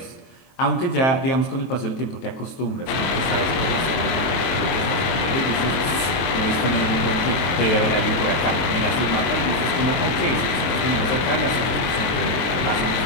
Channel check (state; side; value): late; right; 23 ms